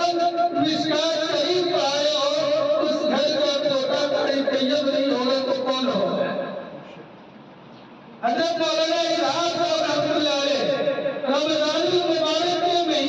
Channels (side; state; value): both; identical; correlation 1.00